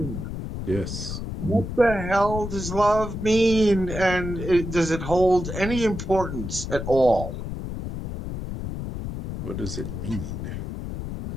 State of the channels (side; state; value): left; noise; rumble, 6 dB below the sound